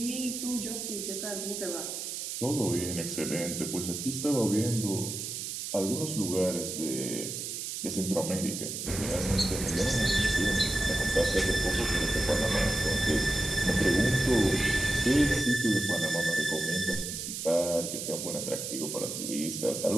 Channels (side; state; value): right; noise; hiss, 5 dB below the sound